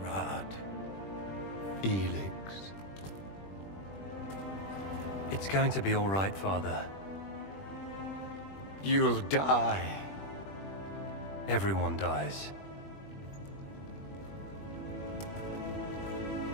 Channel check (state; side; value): late; right; 21 ms